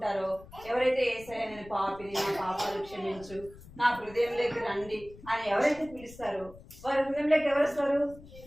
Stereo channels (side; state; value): left; noise; rumble, 19 dB below the sound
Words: ఎవరైతే యేసయ్య నేను పాపిని, నా పాపాలు క్షమించు, నా హృదయంలోకి రండి అని ఎవరైతే పిలుస్తారో వారి హృదయంలోకి ఎవరు వస్తారు?